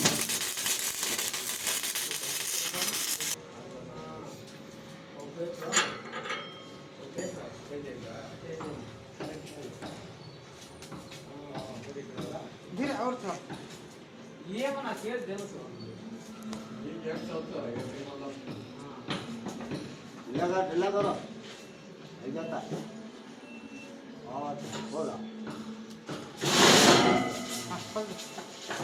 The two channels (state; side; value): identical; both; correlation 1.00